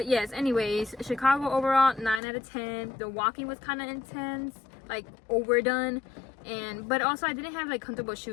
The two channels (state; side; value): drops out; right; at 2.2 s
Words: yes, anyways, Chicago overall 9 out of 10. The walking was kind of intense, like overdone. But also I didn't have like comfortable